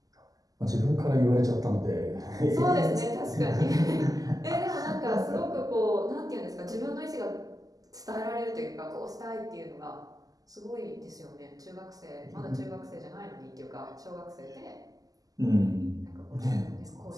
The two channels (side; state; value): left; late; 0.17 ms